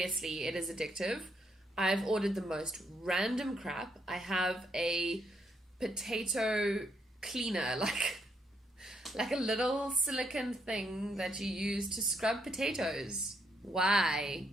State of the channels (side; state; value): both; normal; correlation 0.74